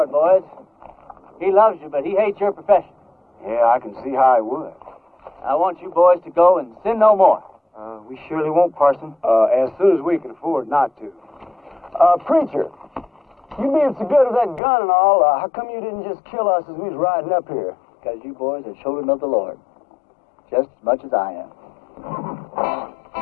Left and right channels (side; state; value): right; drops out; at 14.6 s